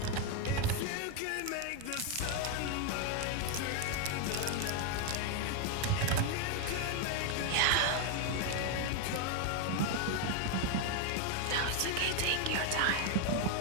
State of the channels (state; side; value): different; both; correlation 0.01